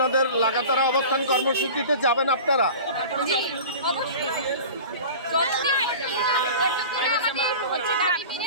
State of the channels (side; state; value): both; inverted; correlation -0.36